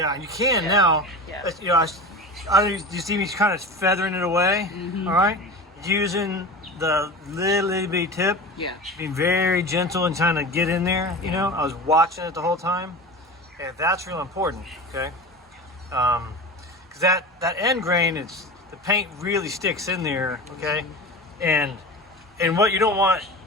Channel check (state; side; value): normal; both; correlation 0.31